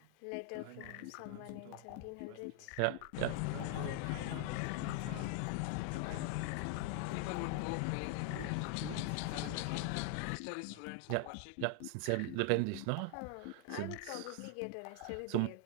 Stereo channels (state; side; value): different; both; correlation 0.00